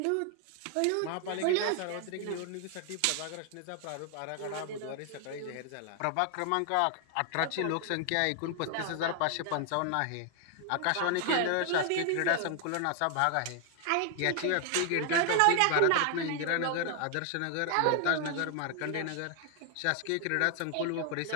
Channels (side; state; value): both; different; correlation 0.00